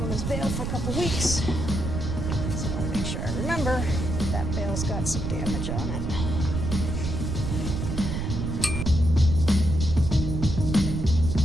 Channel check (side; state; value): right; noise; rumble, 2 dB below the sound